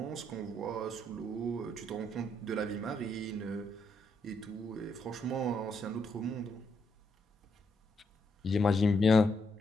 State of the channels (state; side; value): normal; both; correlation 0.77